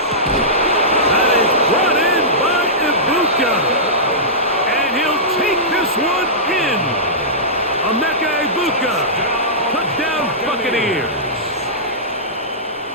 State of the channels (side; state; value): both; normal; correlation -0.16